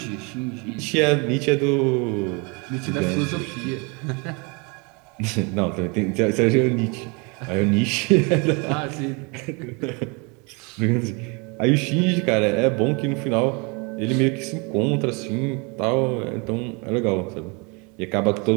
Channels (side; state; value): left; quieter; 31.0 dB